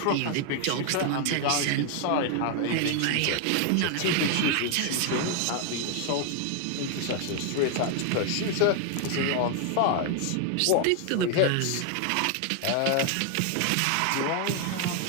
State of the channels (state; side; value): different; both; correlation 0.00